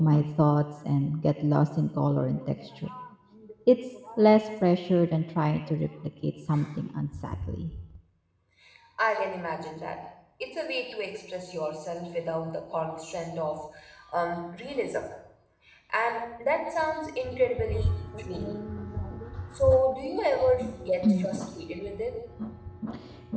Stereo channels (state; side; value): identical; both; correlation 1.00